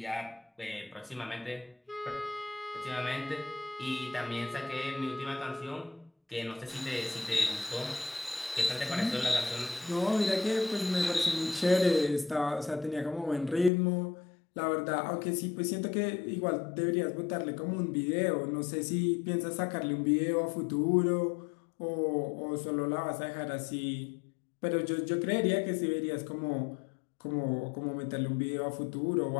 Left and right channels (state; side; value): drops out; right; at 13.7 s